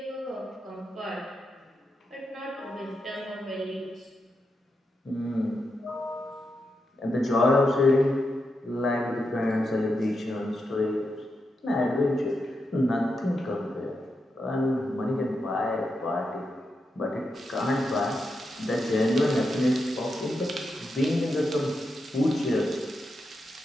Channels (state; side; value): normal; both; correlation 0.86